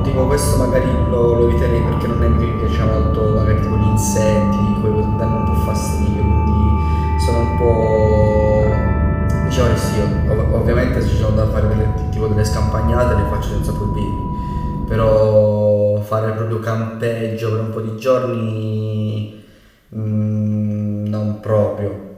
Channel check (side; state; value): both; identical; correlation 1.00